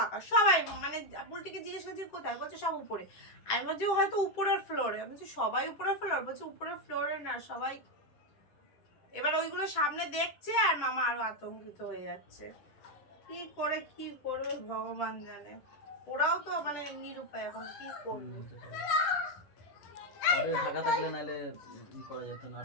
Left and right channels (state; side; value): late; right; 10 ms